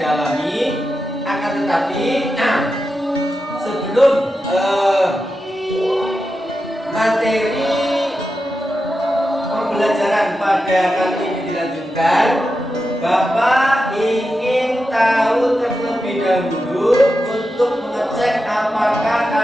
Akan tetapi sebelum materi pembelajaran pada kali ini dilanjutkan, Bapak ingin tahu terlebih dahulu untuk mengecek apakah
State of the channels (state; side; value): normal; both; correlation 0.90